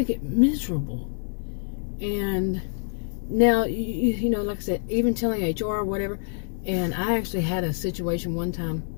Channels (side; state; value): right; silent; digital silence